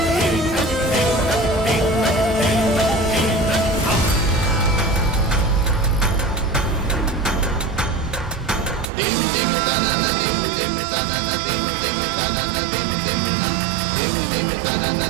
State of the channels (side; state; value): left; drops out; at 8.9 s